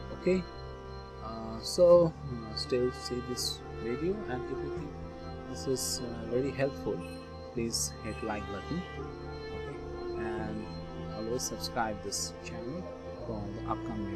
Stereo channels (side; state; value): both; identical; correlation 1.00